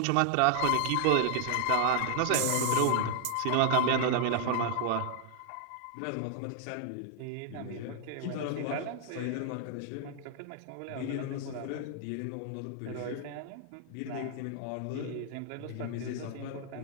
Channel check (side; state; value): both; different; correlation 0.00